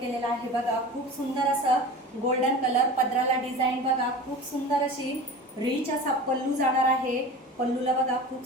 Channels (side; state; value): both; normal; correlation 0.35